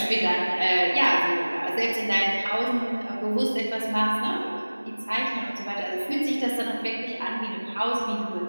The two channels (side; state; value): both; inverted; correlation -1.00